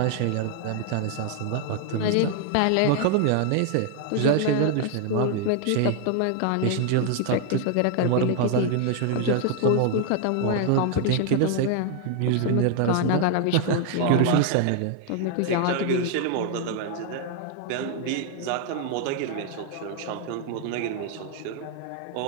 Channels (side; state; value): both; different; correlation 0.00